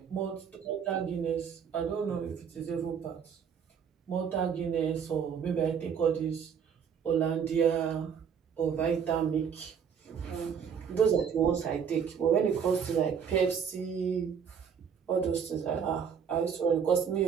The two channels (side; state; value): left; quieter; 7.2 dB